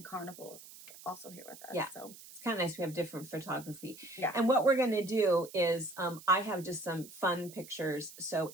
Carnival is also here with us. Yeah, so it's kind of nice. We have different photography. Yeah. And what we're going to do is I have just some fun pictures.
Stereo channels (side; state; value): right; noise; hiss, 18 dB below the sound